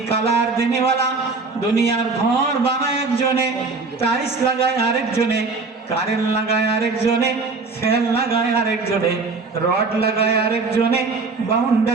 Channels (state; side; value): quieter; left; 4.1 dB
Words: কালার দেনেওয়ালা, দুনিয়ার ঘর বানায় একজনে, টাইলস লাগায় আরেকজনে, কারেন্ট লাগায় আরেকজনে, ফ্যান লাগায় আরেকজনে, রড লাগায় আরেকজনে,